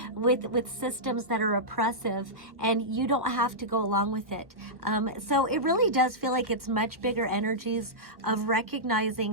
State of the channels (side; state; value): left; late; 1.3 ms